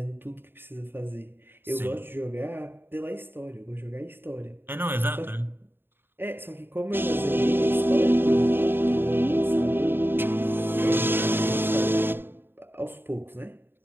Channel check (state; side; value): late; left; 0.10 ms